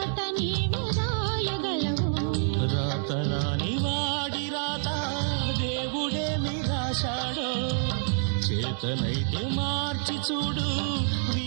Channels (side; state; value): left; silent; 60 dB below the other